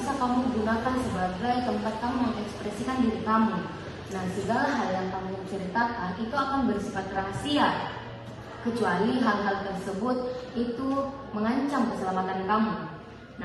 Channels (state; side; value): identical; both; correlation 1.00